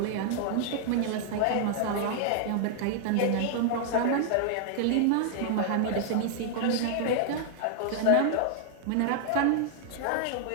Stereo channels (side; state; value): both; different; correlation 0.00